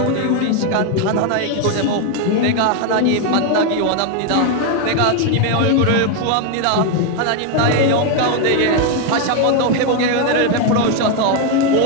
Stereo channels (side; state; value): both; different; correlation 0.01